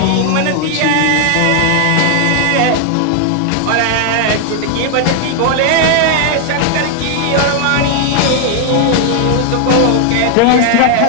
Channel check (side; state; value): both; different; correlation 0.00